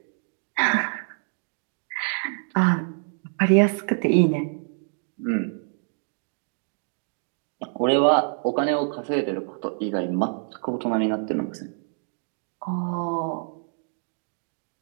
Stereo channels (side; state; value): left; silent; digital silence